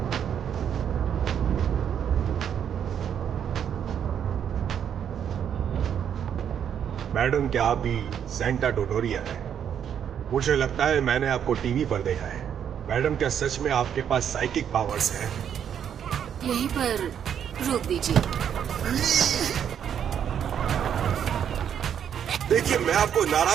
मैडम, क्या आप भी सेंटा डोडोरिया है? मुझे लगता है मैंने आपको टीवी पर देखा है। मैडम, क्या सच में आपके पास साइकिक पावर्स हैं? यहीं पर रोक दीजिए। देखिए, मैं आपको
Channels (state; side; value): quieter; left; 8.7 dB